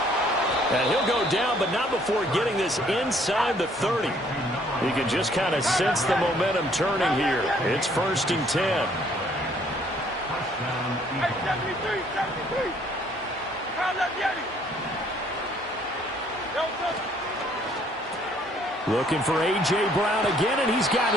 And he'll go down, but not before getting this inside the 30. You can just kind of sense the momentum turning here. It's 1st and 10. Hey, 73. Foul that Yeti. Looking for A.J. Brown again, and he's got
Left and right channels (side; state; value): both; normal; correlation 0.63